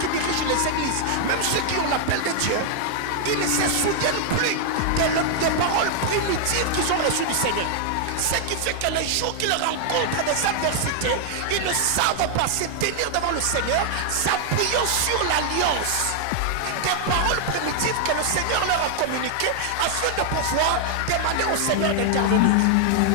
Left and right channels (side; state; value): both; different; correlation 0.00